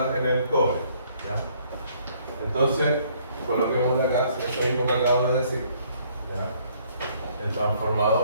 en el cobre. ¿Ya? Entonces, coloquemos de acá eso mismo que acabo de decir. ¿Ya? El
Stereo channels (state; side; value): inverted; both; correlation -0.64